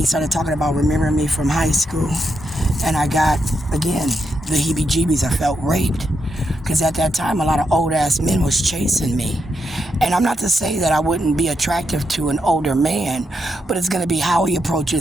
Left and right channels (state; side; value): normal; both; correlation 0.83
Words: started talking about remembering me from high school. And I got, again, the heebie-jeebies. I felt raped. Because at that time, a lot of old-ass men was chasing me. And I'm not to say that I wouldn't be attractive to an older man, but it's going to be how he